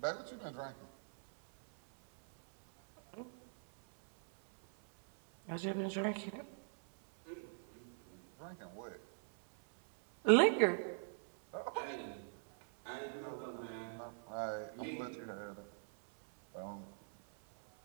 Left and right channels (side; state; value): left; silent; 50 dB below the other